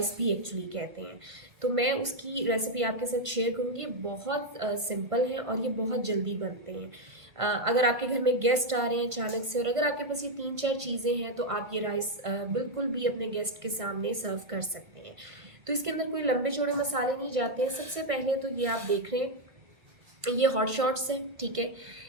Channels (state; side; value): late; left; 1.5 ms